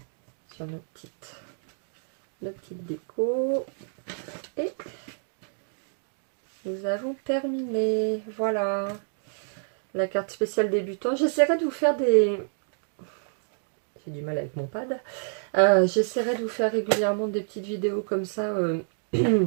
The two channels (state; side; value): silent; left; 59 dB below the other